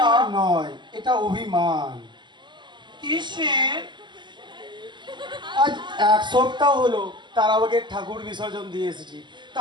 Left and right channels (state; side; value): late; left; 0.22 ms